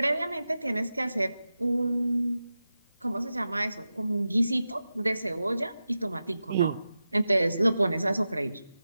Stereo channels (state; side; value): inverted; both; correlation -0.92